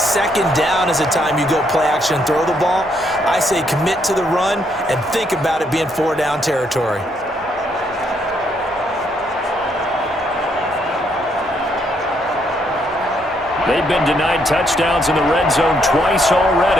down is a time you go play action and throw the ball. I say commit to the run and think about it being 4-down territory. They've been denied touchdowns in the red zone twice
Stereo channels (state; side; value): normal; both; correlation 0.73